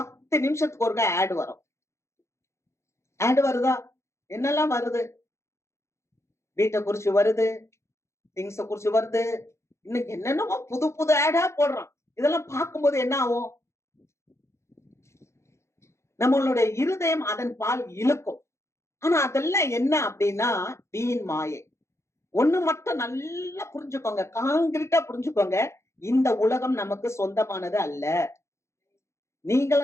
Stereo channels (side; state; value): right; late; 0.13 ms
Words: நிமிஷத்துக்கு ஒருக்கா ஆட் வரும். ஆட் வருதா? என்னெல்லாம் வருது? வீட்டை குறிச்சு வருது, திங்ஸ குறிச்சு வருது, இன்னைக்கு என்னென்னமோ புது புது ஆடா போடுறான். இதெல்லாம் பார்க்கும்போது என்ன ஆகும்? நம்மளுடைய இருதயம் அதன் பால் இழுக்கும். ஆனா அதெல்லாம் என்ன அப்படின்னா வீண் மாயை. ஒண்ணு மட்டும் நல்லா புரிஞ்சுக்கோங்க, காங்கிரீட்டா புரிஞ்சுக்கோங்க. இந்த உலகம் நமக்கு சொந்தமானது அல்ல.